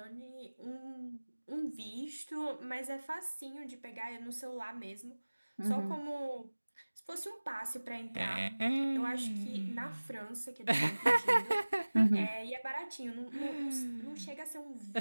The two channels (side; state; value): both; inverted; correlation -1.00